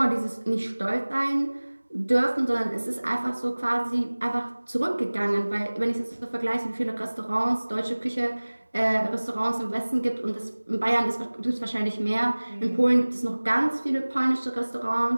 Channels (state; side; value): inverted; both; correlation -1.00